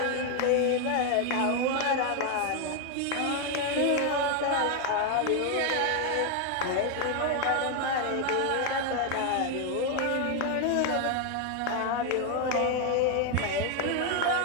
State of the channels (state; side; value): different; both; correlation 0.01